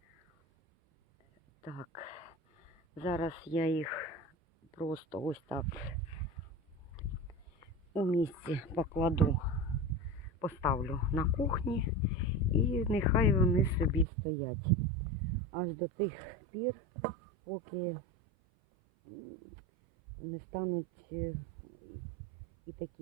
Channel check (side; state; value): left; drops out; at 14.1 s